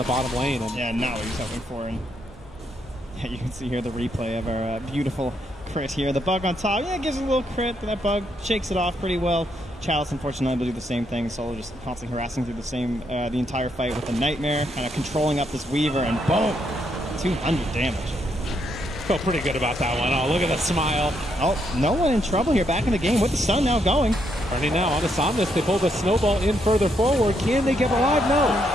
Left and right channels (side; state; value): both; normal; correlation 0.76